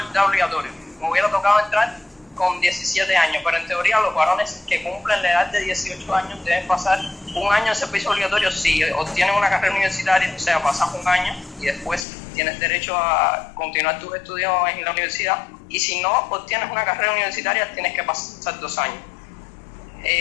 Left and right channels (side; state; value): right; drops out; at 12.1 s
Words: obligatorio. Me hubiera tocado entrar con 17 años, pero en teoría los varones que cumplen la edad de 18 años deben pasar un año de servicio obligatorio si obtienen una carrera universitaria, o sea, pasas un año y después tienes derecho a continuar tus estudios en la universidad, y si no obtienes una carrera universitaria tienes que pasar 2 años.